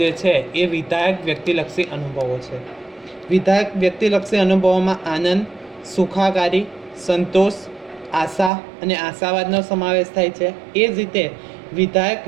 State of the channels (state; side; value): drops out; left; at 8.5 s